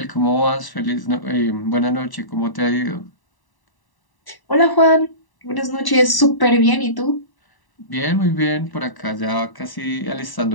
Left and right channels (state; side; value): late; right; 1.0 ms